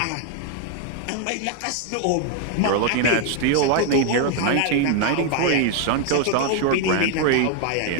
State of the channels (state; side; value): different; both; correlation 0.00